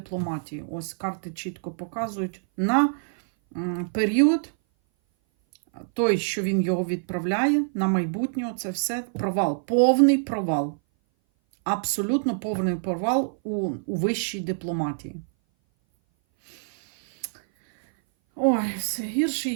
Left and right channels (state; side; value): silent; left; 58 dB below the other